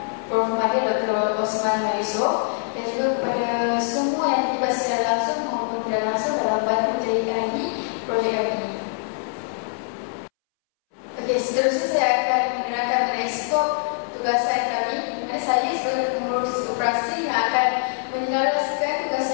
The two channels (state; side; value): silent; right; 63 dB below the other